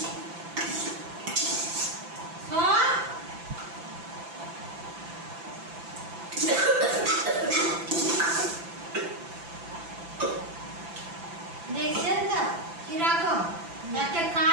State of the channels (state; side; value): late; left; 5.9 ms